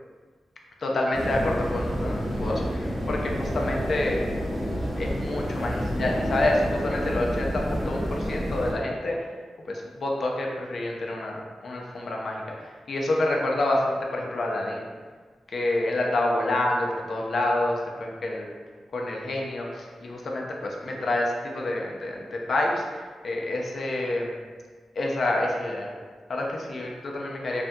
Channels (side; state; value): both; normal; correlation 0.91